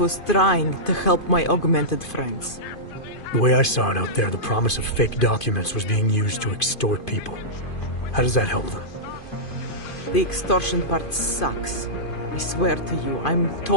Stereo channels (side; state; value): right; late; 2.5 ms